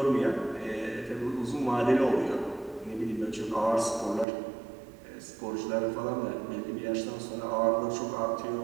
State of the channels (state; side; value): drops out; left; at 4.2 s